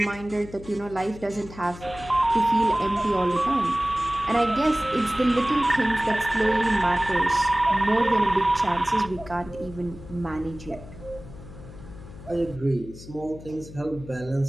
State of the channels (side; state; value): left; noise; hum, 16 dB below the sound